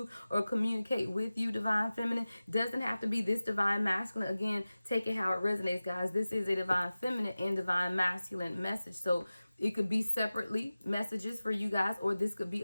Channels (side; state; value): both; inverted; correlation -0.96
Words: or communicate with you, divine feminine. Doesn't have to be this divine masculine. Again, take it how it resonates, guys. This is a divine feminine and divine masculine message. So it could be separately messages for you guys, or this could be